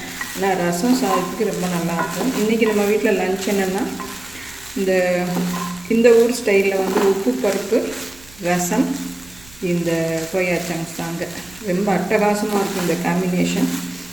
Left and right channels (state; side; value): noise; right; rumble, 24 dB below the sound